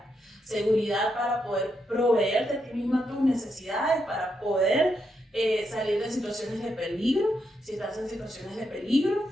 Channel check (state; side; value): normal; both; correlation 0.81